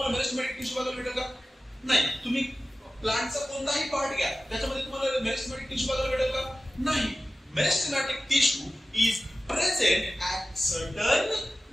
मेरिस्टेमॅटिक टिश्यू बघायला भेटेल का? नाही. तुम्ही प्लांटचा कोणताही पार्ट घ्या त्याच्यामध्ये तुम्हाला मेरिस्टेमॅटिक टिश्यू बघायला भेटेल का? नाही. Meristematic tissue is present at certain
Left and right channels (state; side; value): normal; both; correlation 0.95